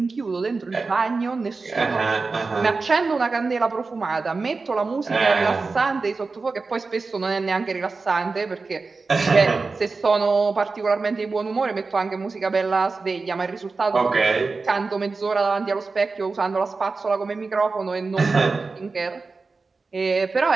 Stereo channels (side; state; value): left; quieter; 4.1 dB